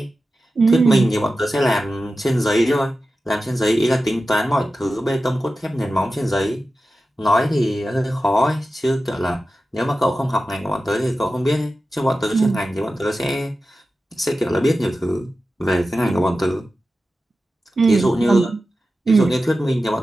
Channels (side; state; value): both; normal; correlation 0.93